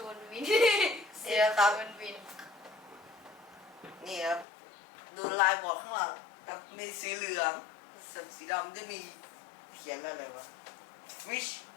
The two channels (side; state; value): right; drops out; at 4.5 s